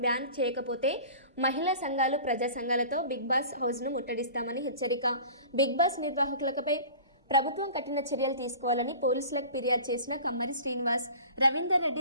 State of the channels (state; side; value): inverted; both; correlation -0.41